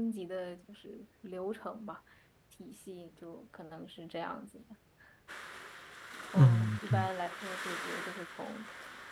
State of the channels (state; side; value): identical; both; correlation 1.00